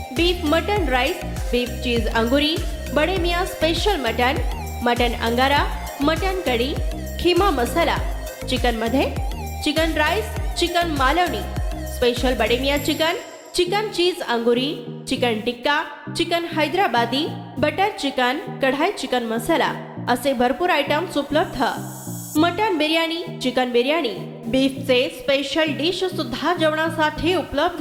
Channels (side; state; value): both; identical; correlation 1.00